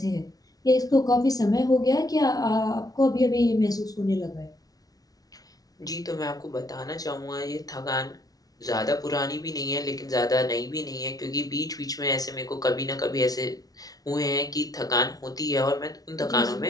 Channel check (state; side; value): late; right; 0.18 ms